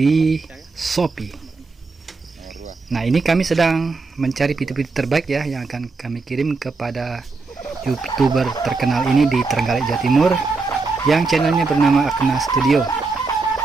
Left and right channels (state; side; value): quieter; left; 4.0 dB